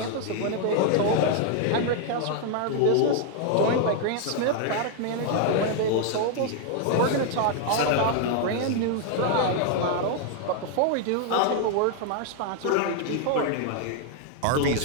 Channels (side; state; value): both; different; correlation 0.00